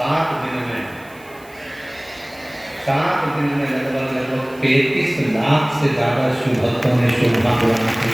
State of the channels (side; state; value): right; noise; hiss, 26 dB below the sound